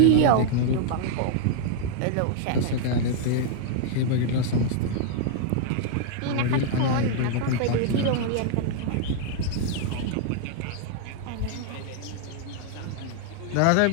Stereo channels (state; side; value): different; both; correlation -0.01